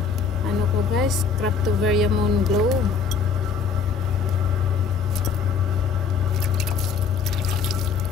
ko, guys, Cryptomeria Moon Glow.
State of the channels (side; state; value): right; quieter; 5.7 dB